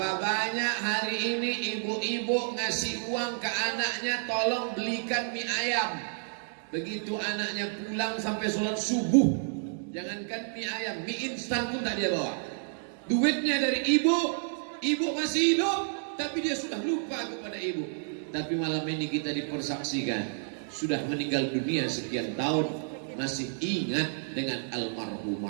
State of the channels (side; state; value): left; silent; digital silence